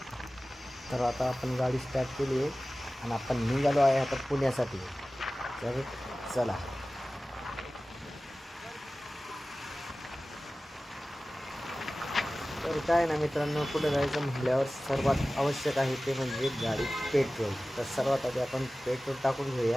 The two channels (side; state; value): both; normal; correlation 0.97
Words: तर आता आपण गाडी स्टार्ट केली आहे आणि आपण निघालो आहे आता पुण्यासाठी. तर चला. तर काय ना मित्रांनो, पुढे जायचं म्हटल्यावर सर्वात आवश्यक आहे ते म्हणजे गाडी पेट्रोल. तर सर्वात आधी आपण पेट्रोल टाकून